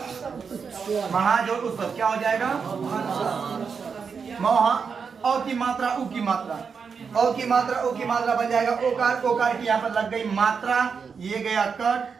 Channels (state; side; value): quieter; left; 5.9 dB